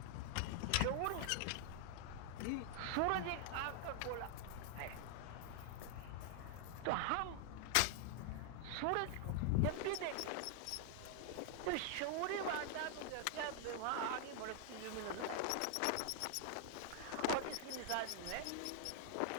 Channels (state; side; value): different; both; correlation 0.00